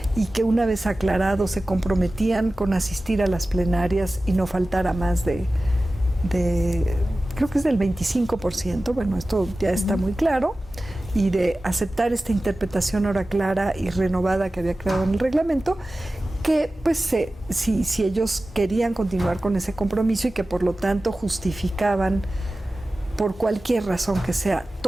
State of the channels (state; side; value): normal; both; correlation 0.96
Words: y que una vez aclarado se comprometían con asistir a las plenarias y no faltara más de creo que es del 25%, bueno, esto ya está muy claro, y de aceptar esta interpretación ahora clara y renovada que había creado en el reglamento, que pues si ellos querían continuar con ese compromiso y que por lo tanto justificaban por cualquier razón que sea